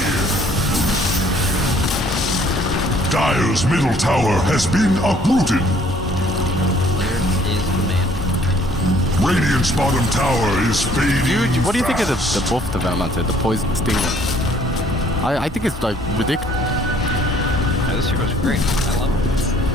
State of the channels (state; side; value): normal; both; correlation 0.60